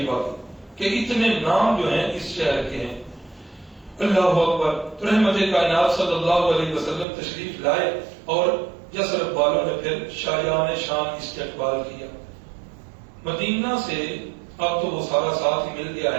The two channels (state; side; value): drops out; left; at 7.1 s